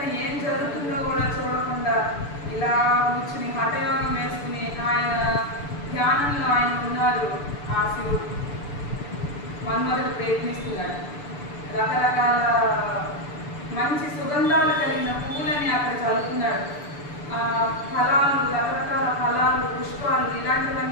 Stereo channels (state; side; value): late; right; 6.9 ms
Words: ఏం జరుగుతుందో కూడా చూడకుండా ఇలా కూర్చుని హఠయోగం వేసుకుని ఆయన ధ్యానంలో ఆయన ఉన్నారు. ఆ శివుడు మన్మథుడు ప్రయత్నిస్తున్నాడు. రకరకాల మంచి సుగంధాలు కలిగిన పువ్వులని అక్కడ చల్లుతున్నాడు. ఫలాలు, రకరకాల ఫలాలు, పుష్పాలు